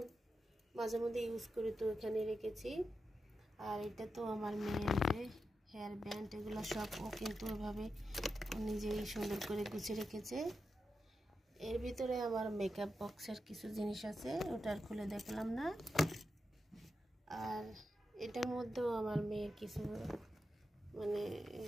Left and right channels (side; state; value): both; normal; correlation 0.89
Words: মাঝে মধ্যে ইউজ করি, তো এখানে রেখেছি। আর এটা তো আমার মেয়ের যে হেয়ার ব্যান্ড, এগুলো সব ও কিন্তু এভাবে নিজেই সুন্দর করে গুছিয়ে রেখেছে। এর ভিতরে আমার মেকআপ বক্সের কিছু জিনিস আছে, ওটা আর খুলে দেখলাম না। আর এটার মধ্যেও আমার মেয়ের কিছু মানে